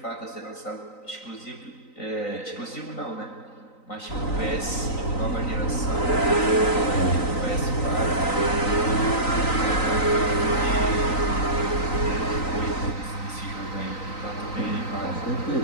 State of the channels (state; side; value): late; right; 3.9 ms